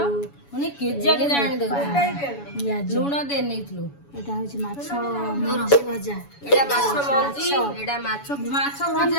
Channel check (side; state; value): right; late; 7.1 ms